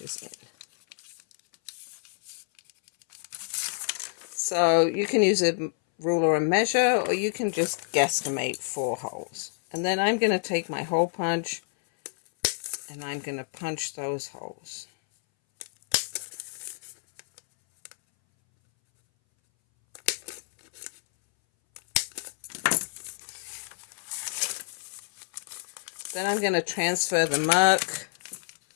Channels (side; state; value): right; silent; 59 dB below the other